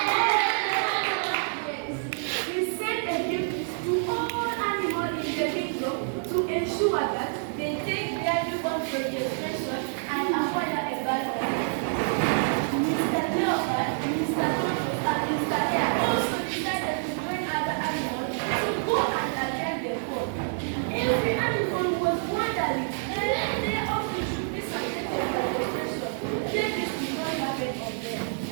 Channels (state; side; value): silent; left; digital silence